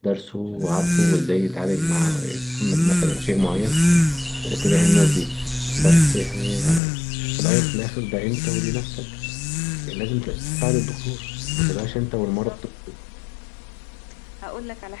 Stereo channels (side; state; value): right; drops out; at 6.8 s